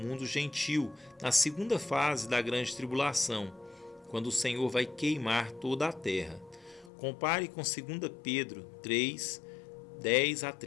gentil na segunda fase da grande tribulação, quando o Senhor vai queimar toda a terra. Compare com 2 Pedro 3, 10 a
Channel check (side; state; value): right; drops out; at 6.9 s